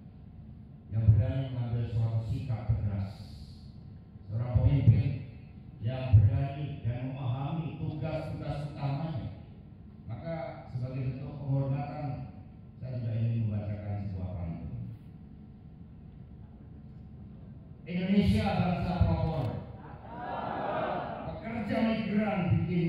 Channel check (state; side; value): identical; both; correlation 1.00